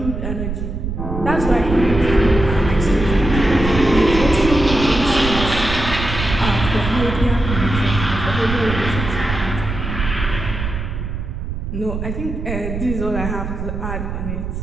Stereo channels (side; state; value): right; noise; rumble, 5 dB below the sound